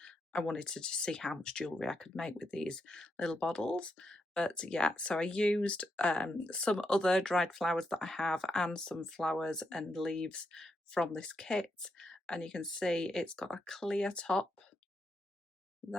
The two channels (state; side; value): normal; both; correlation 0.82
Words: I wanted to just see how much jewellery I could make with these little bottles. But yeah, so I used some other dried flowers that I have and some flowers and leaves from this kit. And you can see it's got a clear top